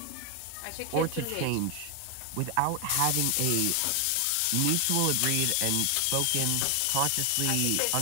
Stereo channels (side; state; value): both; different; correlation 0.00